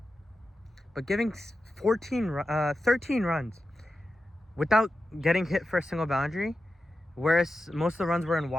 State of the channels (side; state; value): both; normal; correlation 0.91